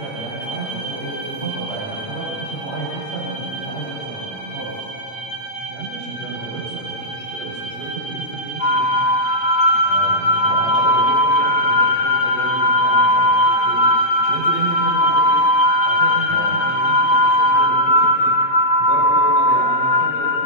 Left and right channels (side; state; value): right; late; 8.7 ms